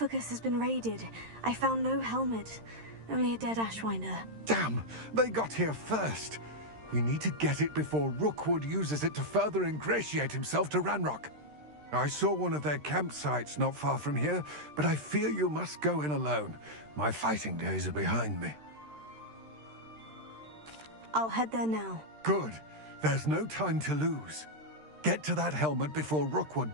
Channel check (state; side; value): late; left; 13 ms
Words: has been raided. I found no helmet, only a dead Ashwinder. Damn! They got here first. We need to get it before Rookwood uses it to further ingratiate himself to Ranrock. I saw one of their campsites not far from here, but I fear you must go in alone. My fighting days are behind me. I'll head there now. Good. There's no time to lose. Get to that helmet before